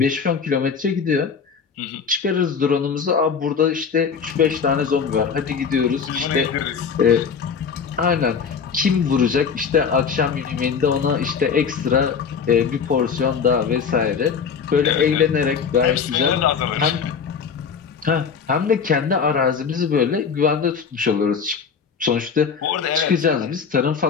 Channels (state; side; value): quieter; right; 6.2 dB